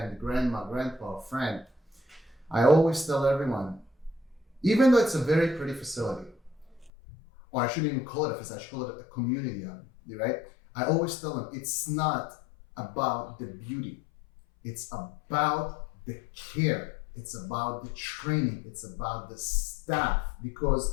grandma, grandpa, friend. I always tell everyone, even though it's a very pretty facility, or I shouldn't even call it a facility, I should call it a community, right? I always tell them it's not about the beauty. It's about the care. It's about the training. It's about the staff,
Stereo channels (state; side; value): drops out; right; at 6.9 s